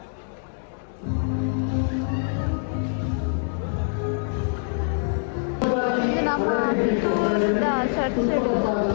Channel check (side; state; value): right; silent; 62 dB below the other